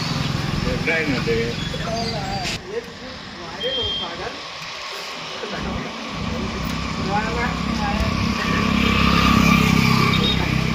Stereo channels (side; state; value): both; identical; correlation 1.00